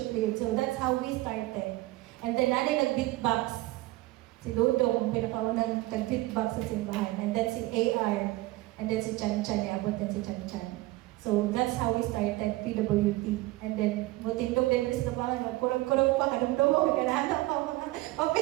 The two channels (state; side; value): quieter; left; 19.4 dB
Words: leader. So that's how we started. And then nanay nag-beatbox. Si Dudong, pinakaunang nag-beatbox sa simbahan. And then si AR. And then si Chan Chan, iabot din si Chan Chan. So that's how we started PWT. And then, mutindog din sa tabangan, magkurang-kurang pa, kadumdumog, kanahanap pa mga